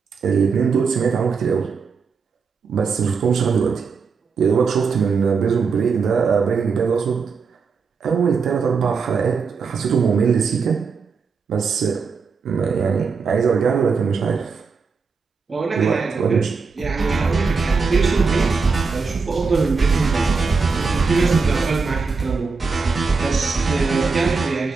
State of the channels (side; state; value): left; quieter; 5.0 dB